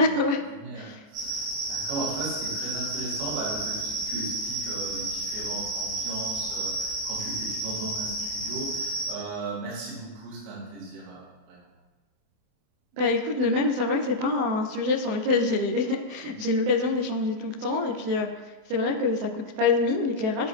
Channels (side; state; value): left; late; 28 ms